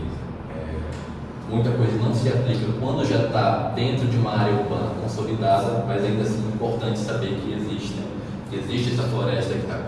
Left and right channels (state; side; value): identical; both; correlation 1.00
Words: muita coisa não se aplica quando já está dentro de uma área urbana consolidada, mas ainda assim é importante saber que existe essa floresta que está